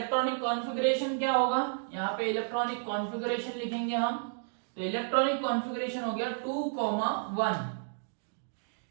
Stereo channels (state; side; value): silent; left; digital silence